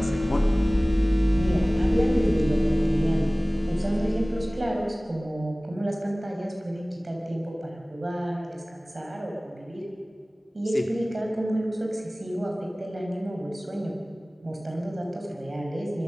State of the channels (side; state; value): both; normal; correlation 0.98